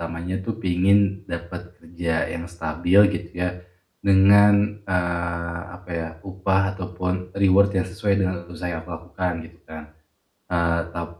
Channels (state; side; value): identical; both; correlation 1.00